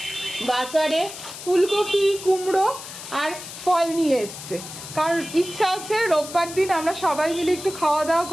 বাজারে ফুলকপি, কুমড়ো আর ফল নিয়ে এসছে, কারণ ইচ্ছা আছে রোববার দিন আমরা সবাই মিলে একটু খাওয়া দাওয়া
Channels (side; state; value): left; noise; hiss, 12 dB below the sound